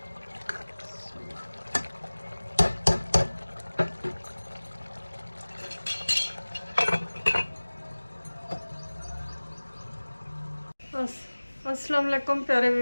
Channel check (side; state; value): both; inverted; correlation -1.00